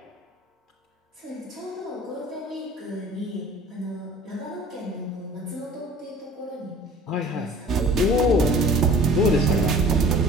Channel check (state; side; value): normal; both; correlation 0.47